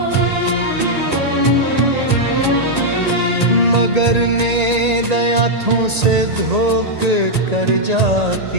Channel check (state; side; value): late; left; 1.8 ms